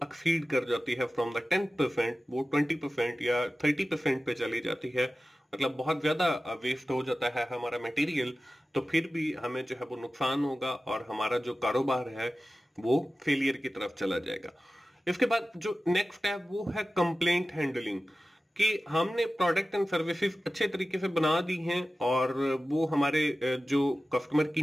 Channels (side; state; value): both; normal; correlation 0.95